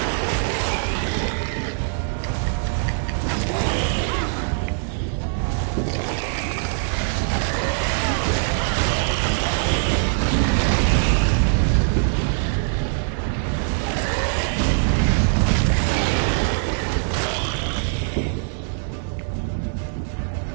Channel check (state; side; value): silent; left; digital silence